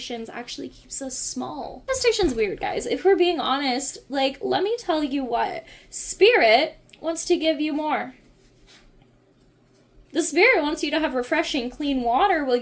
actually keeps us small. Manifestation's weird, guys. If we're being honest, let me tell you what. Spirit wants to give you more. The spirit wants you to have refreshing, clean water while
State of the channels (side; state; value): both; identical; correlation 1.00